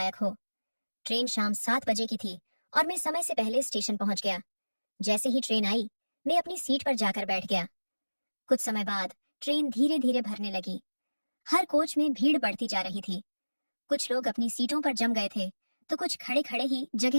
हो। ट्रेन शाम 7 बजे की थी और मैं समय से पहले स्टेशन पहुंच गया। जैसे ही ट्रेन आई, मैं अपनी सीट पर जाकर बैठ गया। कुछ समय बाद ट्रेन धीरे धीरे भरने लगी। हर कोच में भीड़ बढ़ती जा रही थी। कुछ लोग अपनी सीटों पर जम गए थे तो कुछ खड़े खड़े ही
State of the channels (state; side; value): inverted; both; correlation -1.00